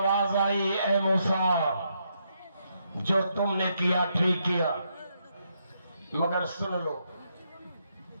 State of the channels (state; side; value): inverted; both; correlation -0.78